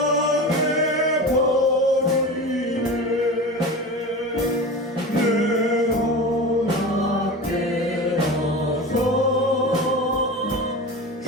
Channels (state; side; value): normal; both; correlation 0.29